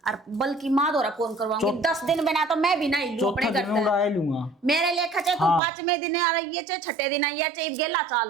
और बल्कि माँ द्वारा फोन करवाऊंगी। 10 दिन बिना तो मैं भी नहीं लूं अपने घर उड़ा लूंगा। मेरे लेखा चाहे तू 5वें दिन आ रही है चाहे 6ठे दिन आई है चाहे गेला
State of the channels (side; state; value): left; drops out; at 5.6 s